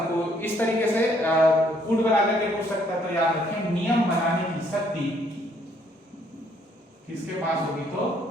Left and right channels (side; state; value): both; normal; correlation 0.67